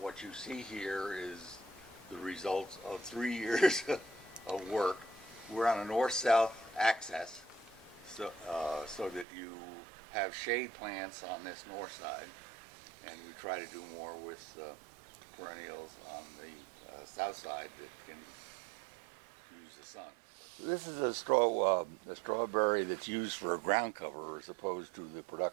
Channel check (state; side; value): drops out; left; at 9.2 s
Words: you see here is the results of 3 years of work. We're on a north-south access, so that you have shade plants on this north side, and we try to do more with perennials on the south side that can use the sun. This is a strawberry that's used for a ground cover as opposed to the